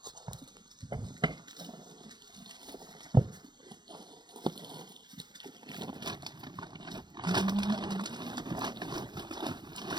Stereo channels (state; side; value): late; left; 0.21 ms